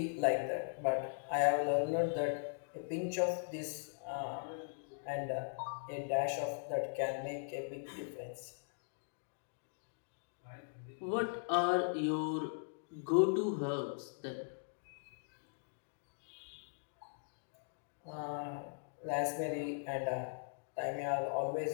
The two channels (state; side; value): silent; right; digital silence